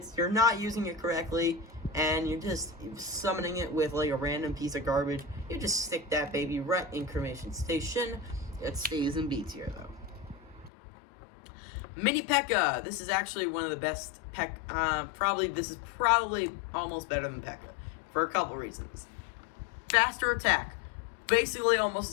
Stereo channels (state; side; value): drops out; right; at 10.7 s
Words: you're not using it correctly, and you're just summoning it with like a random piece of garbage, you just stick that baby right in Cremation Station. It stays in B tier, though. Mini P.E.K.K.A. This is actually one of the best this is probably almost better than P.E.K.K.A. for a couple reasons. Faster attack, basically almost